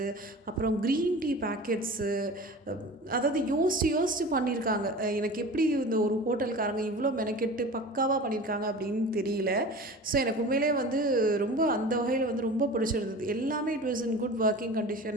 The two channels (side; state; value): both; normal; correlation 0.36